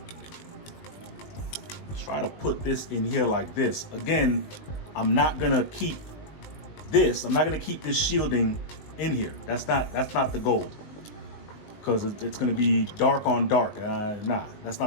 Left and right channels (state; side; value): late; right; 20 ms